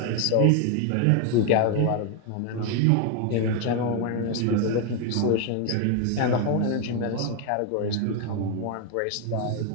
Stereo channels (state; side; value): different; both; correlation 0.01